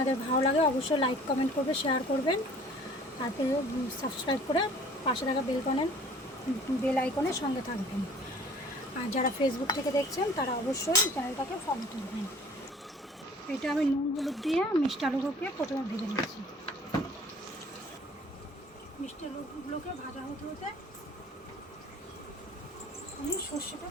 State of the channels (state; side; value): normal; both; correlation 0.51